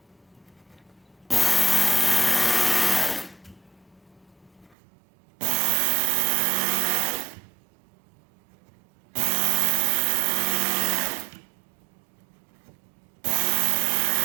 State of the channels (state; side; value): drops out; left; at 4.8 s